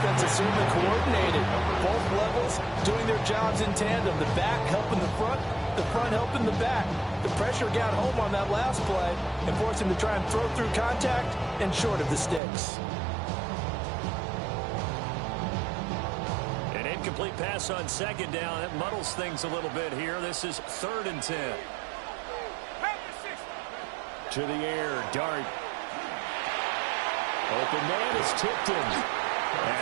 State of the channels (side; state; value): left; drops out; at 12.4 s